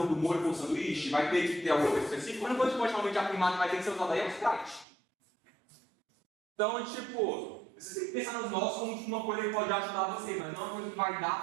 do molho com o sanduíche, vai ter que ter alguma coisa específica, mas depois pode realmente afirmar que vai ter que ser usado aí é o Sprite. Então, tipo, você tem que pensar nos nós como uma coisa que pode ajudar você, mas não é uma coisa que vai dar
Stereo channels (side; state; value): left; drops out; at 4.9 s